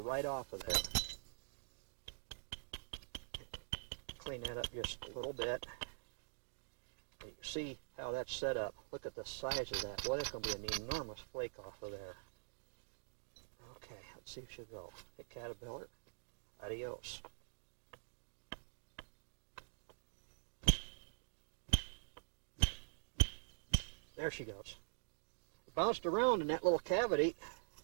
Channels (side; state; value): left; silent; digital silence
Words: right off of there. Clean that up just a little bit. You can see how that's set up. Look at the size of that. Boy, that's going to be an enormous flake off of there. Okay, let's see if she'll go. Hey, caterpillar. Adios. There she goes. Bounced around in that little cavity.